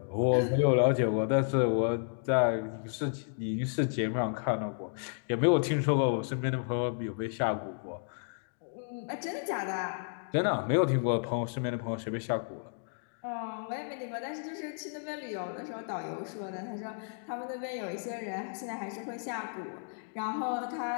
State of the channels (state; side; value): silent; right; digital silence